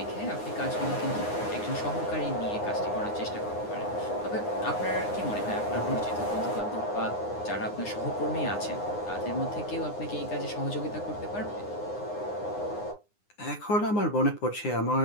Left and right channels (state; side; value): late; right; 9.7 ms